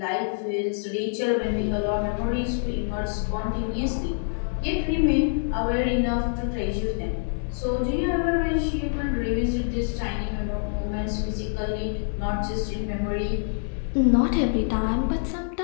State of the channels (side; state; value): right; silent; digital silence